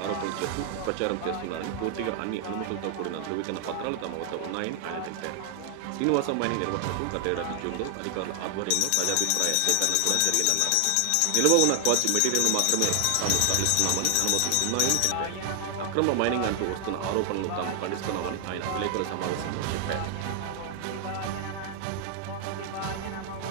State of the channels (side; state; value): both; different; correlation 0.00